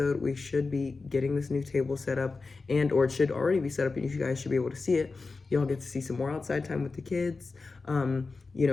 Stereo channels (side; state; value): right; quieter; 4.1 dB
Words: we should be getting this new table set up, and or it should already be set up and you guys should be able to see it. Y'all get to see some more outside time with the kids. You